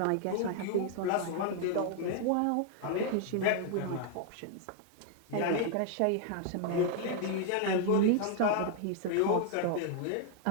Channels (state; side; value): different; both; correlation 0.00